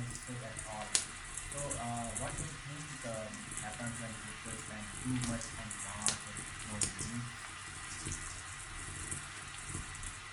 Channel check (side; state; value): both; identical; correlation 1.00